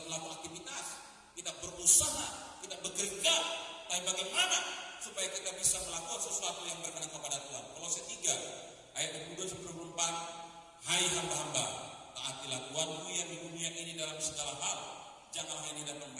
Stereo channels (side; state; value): both; identical; correlation 1.00